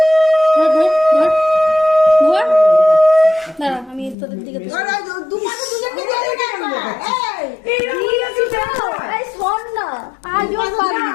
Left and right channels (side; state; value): right; drops out; at 4.2 s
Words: ধর ধর ধর ধর, দাঁড়া আমি তোদের দিকে তুলছি। ওরা দুপাশে দুজনকে দিয়ে দে না। এই এই শোন না, আজও পারবি না।